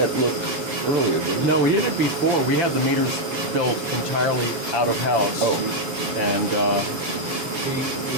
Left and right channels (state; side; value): late; left; 7.1 ms